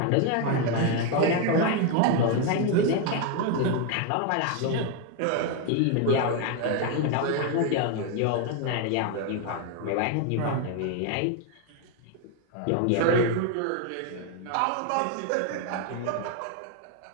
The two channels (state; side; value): different; both; correlation 0.01